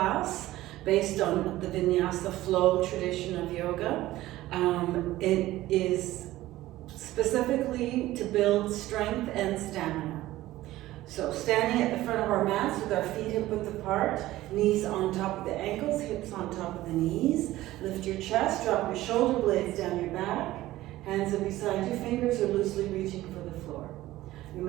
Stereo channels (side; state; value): left; quieter; 16.1 dB